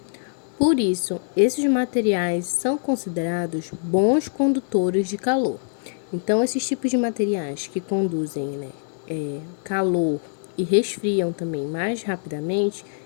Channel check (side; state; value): right; silent; digital silence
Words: Por isso, esses materiais são considerados bons condutores de calor. Então, esses tipos de materiais que conduzem, calor e resfriam também mais rapidamente,